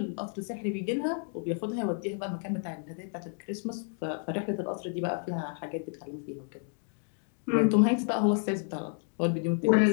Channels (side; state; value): right; silent; 57 dB below the other